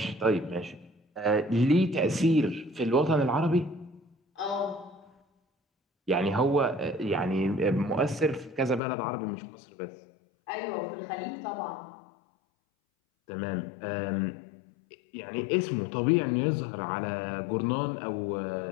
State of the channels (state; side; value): drops out; right; at 8.8 s